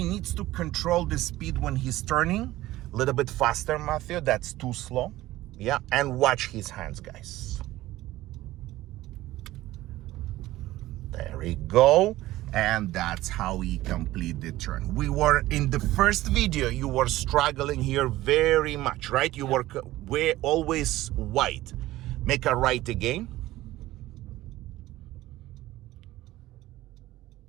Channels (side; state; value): left; quieter; 16.4 dB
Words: needs to control the speed when he's turning. A little bit faster, Matthew, that's too slow. Yeah, and watch his hands, guys. There we go. And that's how he complete the turn. We were in the first video, you were struggling here very much, right? You were always wide. Make a right again.